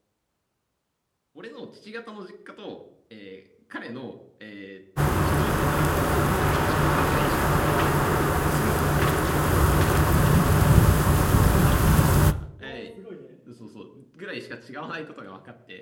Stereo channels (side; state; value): both; identical; correlation 1.00